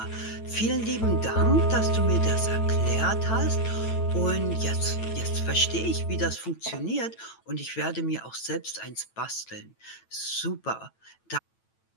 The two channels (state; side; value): late; right; 9.0 ms